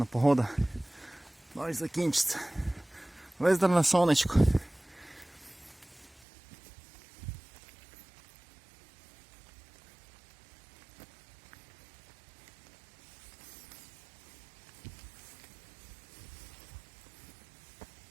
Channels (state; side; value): drops out; left; at 6.2 s